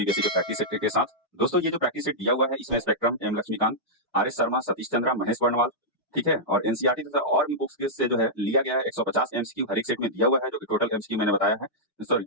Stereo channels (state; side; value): normal; both; correlation -0.10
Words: के प्रैक्टिस सेट के साथ। दोस्तों ये जो प्रैक्टिस सेट दिया हुआ है इसमें Spectrum, M Laxmikanth, R S Sharma, Satish Chandra, Mahesh Varnwal, ठीक है, और एनसीईआरटी तथा और भी बुक्स के से जो है लिया गया है। 150 एमसीक्यू हर एक सेट में दिया हुआ है, जो कि टोटल एमसीक्यू मैंने बताया है। सॉरी,